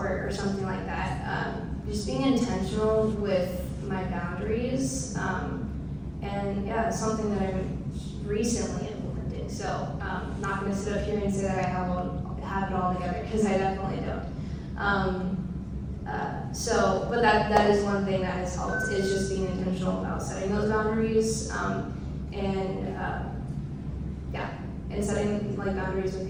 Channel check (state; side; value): identical; both; correlation 1.00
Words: something like that. Just being intentional with my boundaries, and yeah, it's something that I'm recently implementing. So not going to sit up here and say that I have it all together, because I definitely don't. But that is one thing that has helped, is just being intentional about setting those boundaries, and setting like boundaries